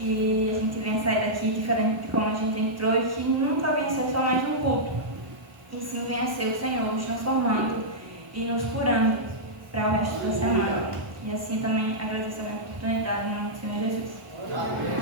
a gente venha sair daqui diferente de como a gente entrou e que nunca venha ser só mais um culto, e sim venha ser o Senhor nos transformando e nos curando para o resto da semana. E assim também agradeço a minha oportunidade no nome do Senhor Jesus.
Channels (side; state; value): left; late; 1.1 ms